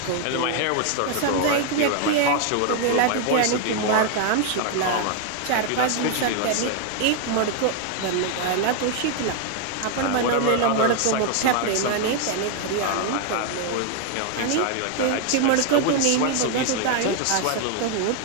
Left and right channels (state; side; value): different; both; correlation 0.00